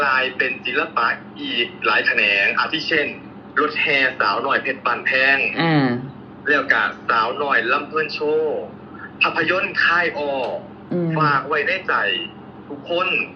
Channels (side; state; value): both; identical; correlation 1.00